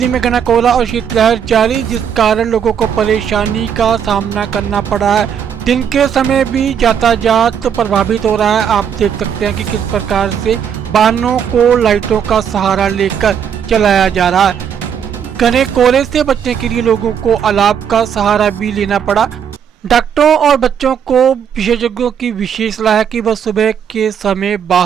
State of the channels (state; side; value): quieter; left; 8.0 dB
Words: में घना कोहरा और शीतलहर जारी, जिस कारण लोगों को परेशानी का सामना करना पड़ा है। दिन के समय भी यातायात प्रभावित हो रहा है। आप देख सकते हैं कि किस प्रकार से वाहनों को लाइटों का सहारा लेकर चलाया जा रहा है। घने कोहरे से बचने के लिए लोगों को अलाव का सहारा भी लेना पड़ा। डॉक्टरों और बच्चों को विशेषज्ञों की विशेष सलाह है कि वह सुबह के समय